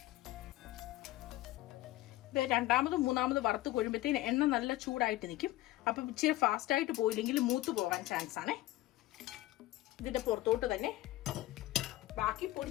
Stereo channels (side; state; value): right; quieter; 16.5 dB